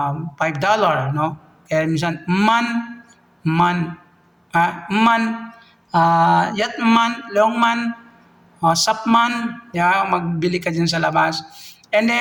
no? Kaya minsan, man, yatman, longman, sapman, magbili ka dyan sa labas. And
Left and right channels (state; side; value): identical; both; correlation 1.00